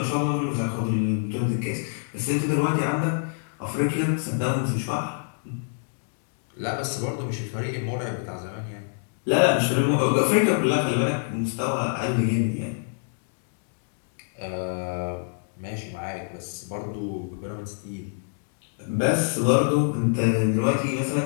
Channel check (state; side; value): silent; right; digital silence